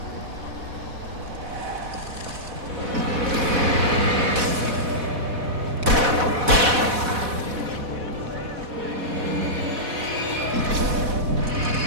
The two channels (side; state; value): left; late; 4.1 ms